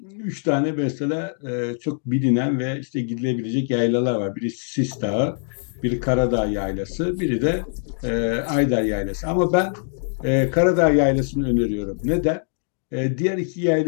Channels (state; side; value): silent; right; digital silence